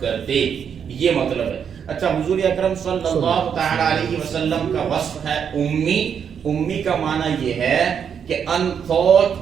کرتے، یہ مطلب ہے۔ اچھا، حضور اکرم صلی اللہ تعالی علیہ وسلم کا وصف ہے امی۔ امی کا معنی یہ ہے کہ untaught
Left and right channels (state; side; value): quieter; left; 7.6 dB